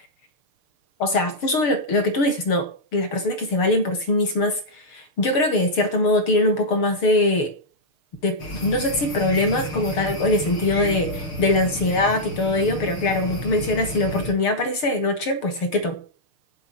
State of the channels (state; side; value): late; right; 6.6 ms